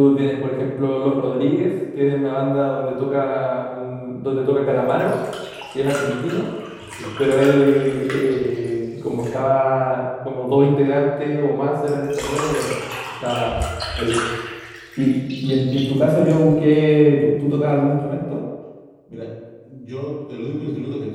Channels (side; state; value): both; identical; correlation 1.00